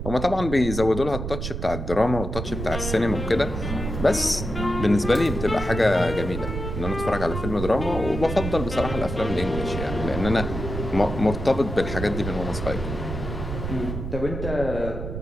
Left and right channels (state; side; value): noise; right; rumble, 5 dB below the sound